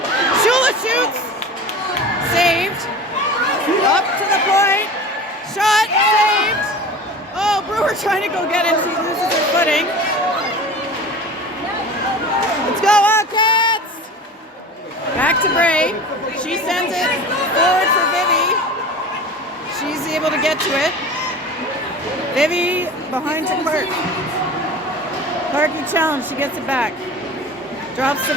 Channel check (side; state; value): both; normal; correlation 0.36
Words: Shula shoots. Saved. Up to the point. Shot. Saved. Oh, Brewer trying to go get it. She loses her footing. Let's go, Wildcats! Back to Bray. She sends it forward for Vivi. She's able to get to it. Vivi behind to Clark. Clarky challenge. She gets it back. Drops to